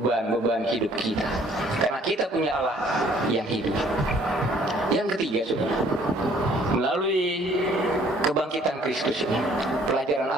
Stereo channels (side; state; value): both; normal; correlation 0.59